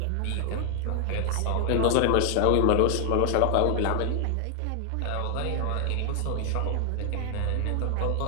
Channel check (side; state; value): both; different; correlation 0.00